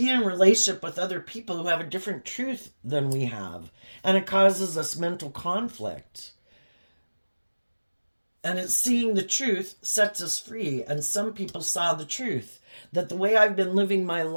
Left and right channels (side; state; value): both; inverted; correlation -1.00